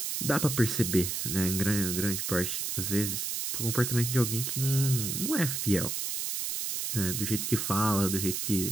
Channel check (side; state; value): right; noise; hiss, 2 dB below the sound